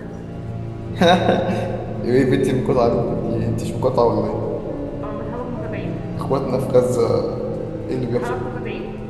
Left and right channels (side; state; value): both; identical; correlation 1.00